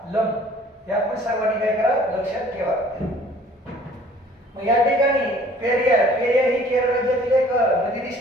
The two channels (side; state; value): both; normal; correlation 0.53